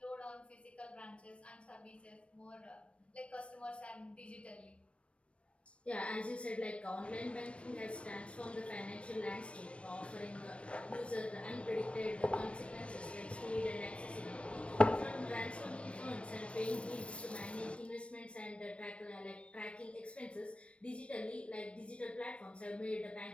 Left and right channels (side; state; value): right; late; 0.061 ms